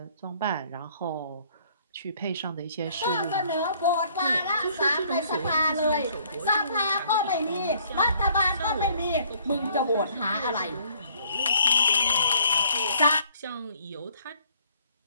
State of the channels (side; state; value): both; inverted; correlation -0.61